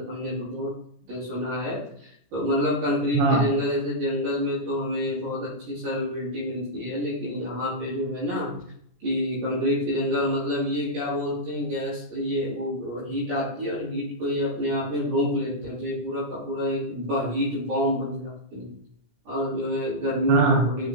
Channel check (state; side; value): late; left; 17 ms